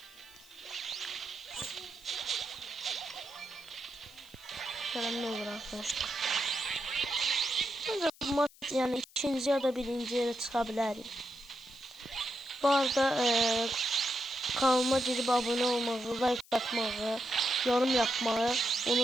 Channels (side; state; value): left; noise; hiss, 24 dB below the sound